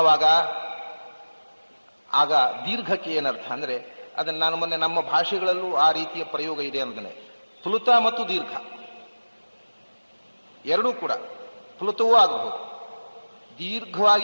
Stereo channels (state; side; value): inverted; both; correlation -1.00